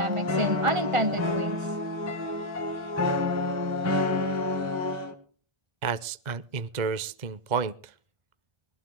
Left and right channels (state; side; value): late; left; 1.3 ms